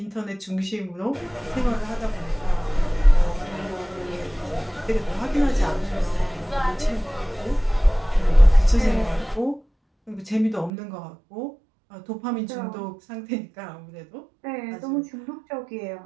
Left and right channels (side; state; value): left; drops out; at 10.7 s